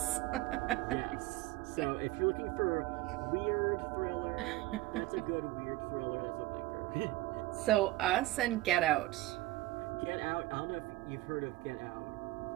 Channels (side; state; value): left; quieter; 17.8 dB